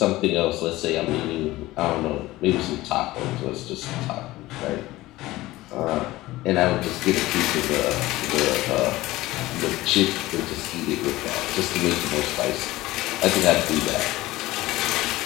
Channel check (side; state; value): right; quieter; 18.0 dB